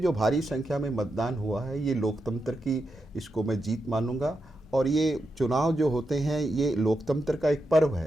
भारी संख्या में मतदान हुआ है, ये लोकतंत्र की, इसको मैं जीत मानूंगा। और ये चुनाव जो होते हैं, ये लोकतंत्र का एक पर्व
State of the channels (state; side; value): normal; both; correlation 0.87